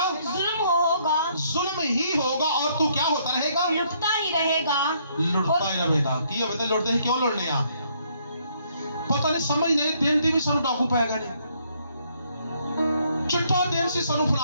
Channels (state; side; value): inverted; both; correlation -0.69